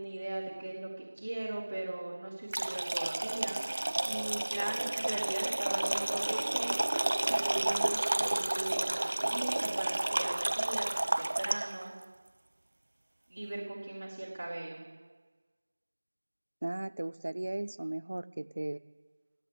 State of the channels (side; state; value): both; inverted; correlation -1.00